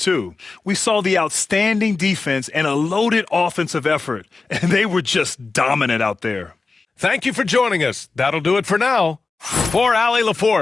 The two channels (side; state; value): right; quieter; 4.0 dB